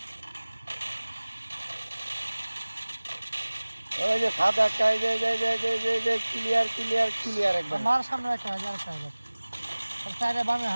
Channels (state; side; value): inverted; both; correlation -1.00